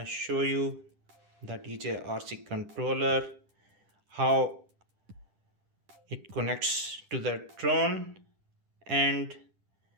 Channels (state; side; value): late; left; 10 ms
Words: show you the DJI controller, how it connects to the drone and